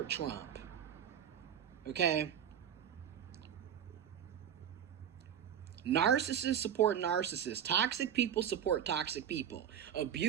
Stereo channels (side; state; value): left; quieter; 9.3 dB